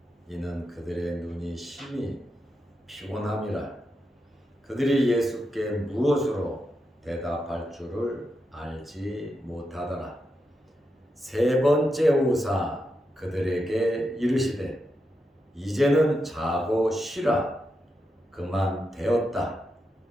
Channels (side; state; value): both; normal; correlation 0.86